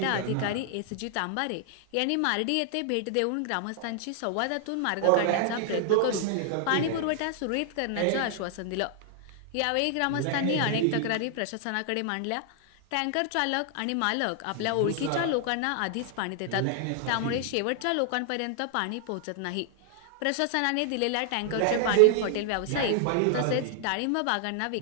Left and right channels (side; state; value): both; different; correlation 0.00